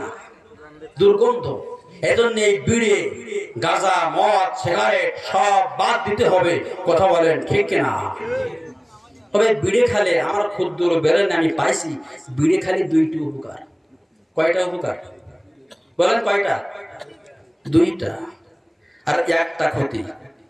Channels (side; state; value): both; identical; correlation 1.00